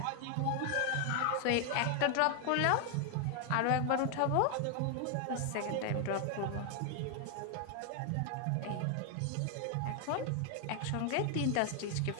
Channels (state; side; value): different; both; correlation 0.00